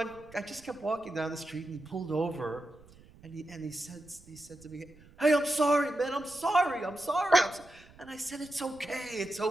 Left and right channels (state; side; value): noise; right; rumble, 24 dB below the sound